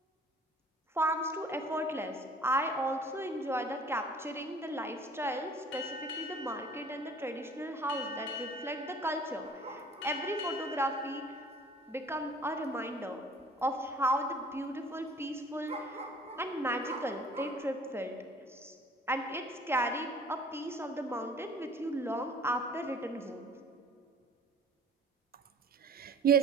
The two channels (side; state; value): both; normal; correlation 0.50